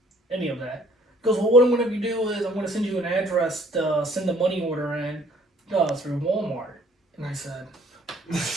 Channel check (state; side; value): normal; both; correlation 0.59